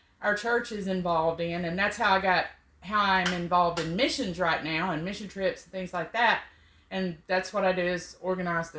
our church is involved in, and that's how I'm involved in missions right now and mission trips and things like that. And that's what I do, is organize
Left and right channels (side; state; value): both; identical; correlation 1.00